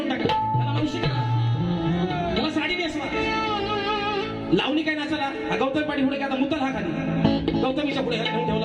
टाका, ह्याला मावशी करा, ह्याला साडी नेसवा. लावणी काय नाचाला? हा गौतम पाटी पुढे आता मुतल हा खाली, गौतमीच्या पुढे ह्याला घेऊन ठेवला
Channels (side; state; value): both; identical; correlation 1.00